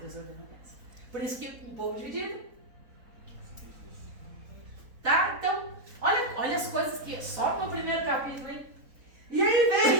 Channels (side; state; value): left; late; 4.0 ms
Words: Deus ordena a bênção. Por isso que um povo dividido. Tá? Então, olha olha as coisas que... Só no primeiro capítulo, hein? E